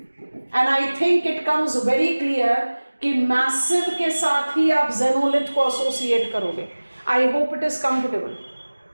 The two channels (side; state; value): both; inverted; correlation -1.00